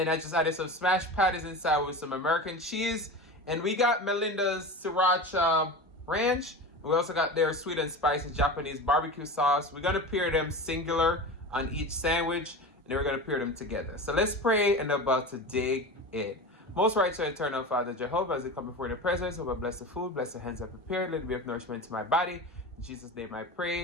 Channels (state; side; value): normal; both; correlation 0.29